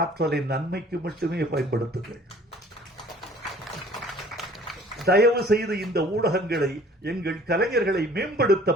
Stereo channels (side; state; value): both; normal; correlation 0.52